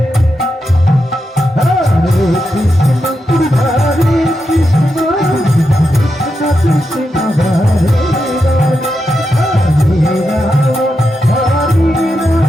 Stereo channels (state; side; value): normal; both; correlation 0.86